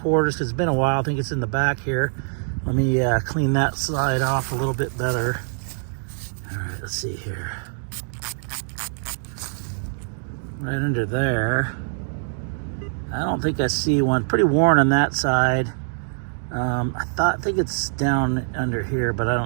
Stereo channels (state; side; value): silent; left; digital silence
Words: because it's been a while. I think it's in the back here. Let me clean that side off a little bit better. All right, let's see here. Right under there. I don't think I see one. Pretty worn on that side. I think it's down under here, but I